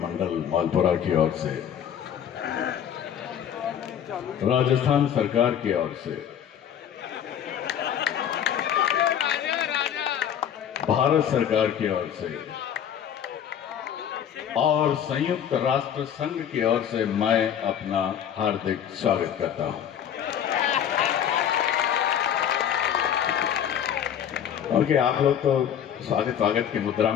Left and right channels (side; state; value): right; quieter; 9.2 dB